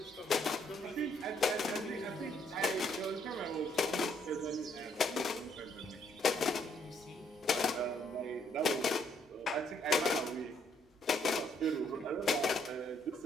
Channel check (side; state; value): both; normal; correlation 0.69